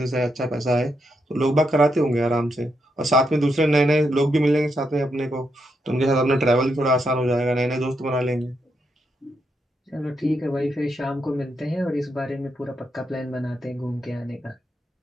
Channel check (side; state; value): both; normal; correlation 0.81